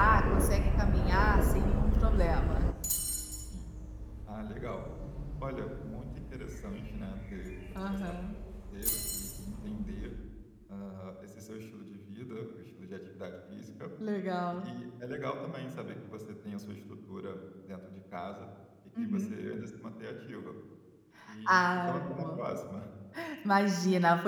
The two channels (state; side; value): identical; both; correlation 1.00